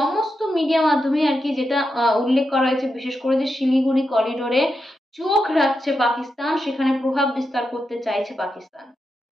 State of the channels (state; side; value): normal; both; correlation 0.87